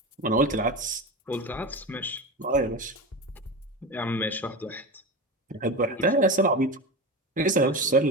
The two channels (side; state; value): both; normal; correlation 0.25